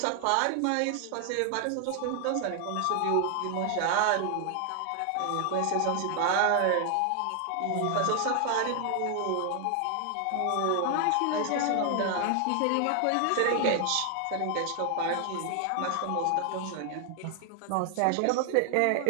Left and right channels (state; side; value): different; both; correlation 0.00